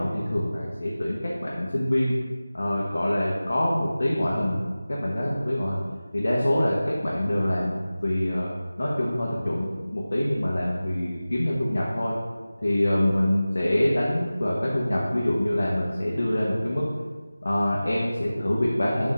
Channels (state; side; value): inverted; both; correlation -0.97